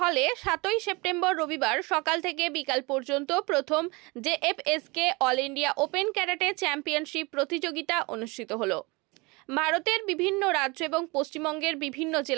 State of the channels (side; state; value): left; quieter; 26.1 dB